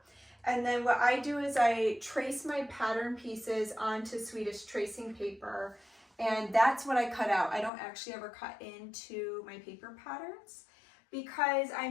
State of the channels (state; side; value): drops out; right; at 7.7 s